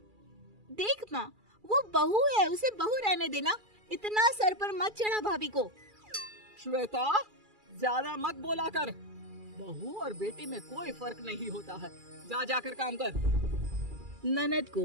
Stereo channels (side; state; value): left; late; 2.3 ms